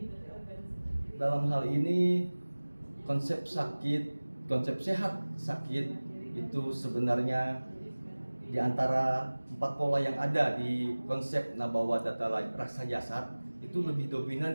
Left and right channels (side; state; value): both; inverted; correlation -1.00